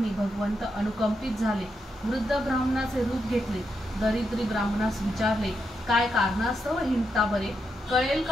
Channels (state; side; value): normal; both; correlation 0.83